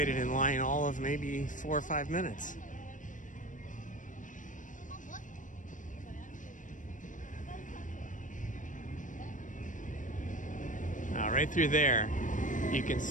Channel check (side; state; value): right; late; 0.37 ms